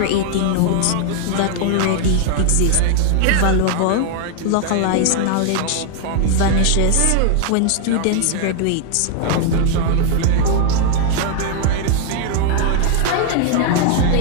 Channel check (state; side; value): different; both; correlation 0.00